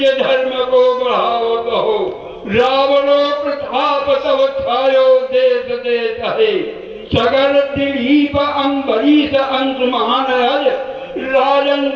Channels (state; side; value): identical; both; correlation 1.00